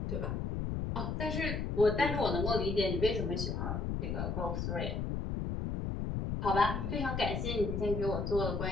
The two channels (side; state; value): left; noise; rumble, 2 dB below the sound